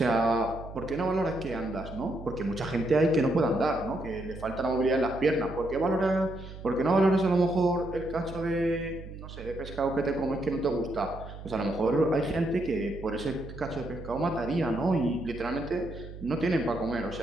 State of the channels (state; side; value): noise; right; hum, 13 dB below the sound